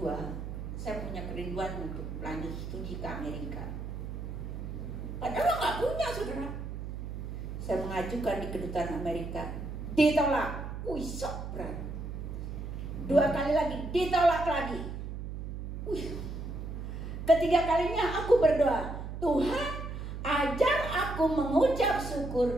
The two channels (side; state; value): right; noise; hum, 7 dB below the sound